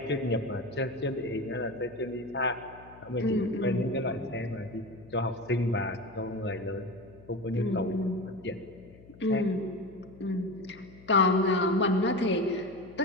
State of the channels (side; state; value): left; noise; hum, 21 dB below the sound